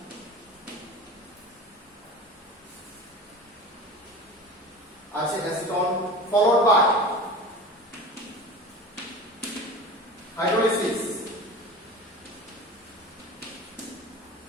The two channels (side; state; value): both; normal; correlation 0.34